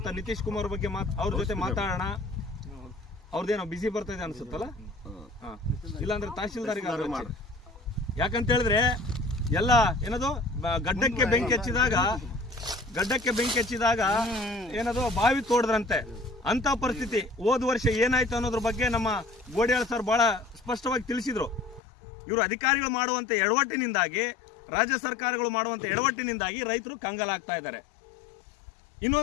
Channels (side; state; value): right; drops out; at 21.8 s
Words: ನಿತೀಶ್ ಕುಮಾರ್ ಬಗ್ಗೆ ಅವ್ರ ಜೊತೆ ಮಾತಾಡೋಣ. ಅವ್ರದ್ದೇನೋ ಬಿಸಿ ಬರ್ತಾ ಇದೆ ಅನ್ಸುತ್ತಲ್ಲ. ಇಲ್ಲಾಂದ್ರೆ ತಹಶೀಲ್ದಾರಿಗೆ ಮಾಡಿ. ಯಾಕಂತ ಹೇಳಿದ್ರೆ ಎಲ್ಲ ಏನದು ಗಡ್ಡಕ್ಕೆ ಬೆಂಕಿ ಹಚ್ಚಿದಾಗ ಏನದು ಬಾವಿ ತೋಡದ್ರಂತೆ ಅಂತ ಪರಿಸ್ಥಿತಿ. ಹೋದ ವರ್ಷ ಏನಾಯ್ತು ಅನ್ನೋದ್ರ ಬಗ್ಗೆ ನಮ್ಮ ಗೋಡಿಯಾಳ್ ಸರ್ ಬಹಳ ಸ್ಪಷ್ಟವಾಗಿ ತಿಳಿಸಿದ್ರು. ಇವರು ಅಧಿಕಾರಿಗಳು ಮಾಡುವಂತ ಎಡವಟ್ಟಿನಿಂದಾಗಿ, ರಾಜ್ಯ ಸರ್ಕಾರಗಳು ಮಾಡುವಂತ ಎಡವಟ್ಟಿನಿಂದಾಗಿ ರೈತರು ಕಂಗಾಲಾಗ್ತಾ ಇದ್ದಾರೆ.